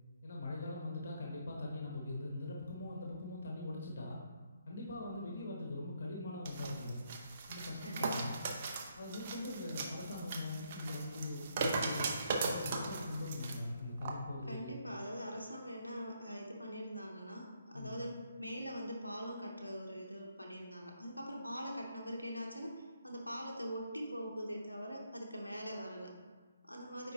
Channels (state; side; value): inverted; both; correlation -0.73